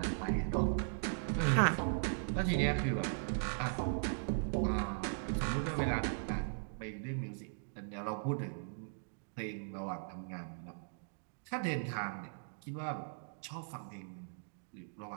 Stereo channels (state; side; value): silent; left; digital silence